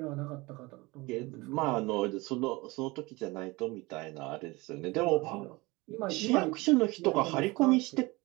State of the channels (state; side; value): quieter; left; 23.1 dB